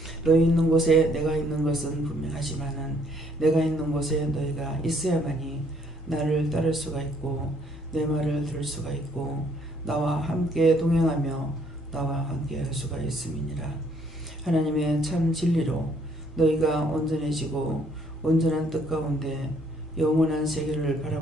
너희 있는 곳에 내가 있는 것은 분명하지만은 내가 있는 곳에 너희가 있어야만이 나를 따를 수가 있고 내 말을 들을 수가 있고 나와 함께 동행하며 나와 함께 할 수가 있음이니라. 하나님의 참 진리로 너희가 온전해지고 온전한 뜻 가운데 영원한 세계를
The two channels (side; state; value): both; normal; correlation 0.65